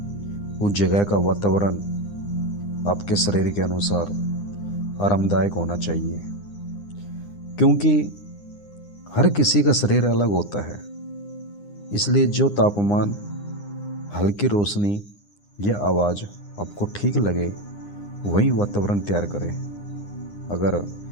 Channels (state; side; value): late; right; 9.8 ms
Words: उस जगह का वातावरण आपके शरीर के अनुसार आरामदायक होना चाहिए, क्योंकि हर किसी का शरीर अलग होता है। इसलिए जो तापमान, हल्की रोशनी या आवाज़ आपको ठीक लगे वही वातावरण तैयार करें। अगर